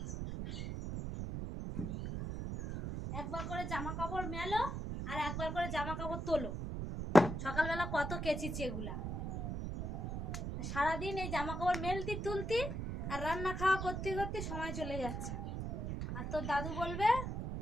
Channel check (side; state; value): right; noise; rumble, 4 dB below the sound